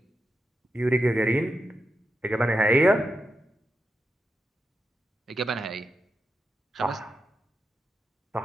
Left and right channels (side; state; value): both; normal; correlation 0.86